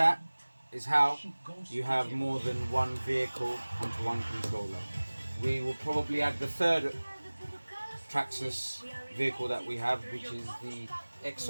is how you have more than one vehicle onto one controller. We will probably add the third Traxxas vehicle that we have, which is the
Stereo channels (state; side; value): inverted; both; correlation -1.00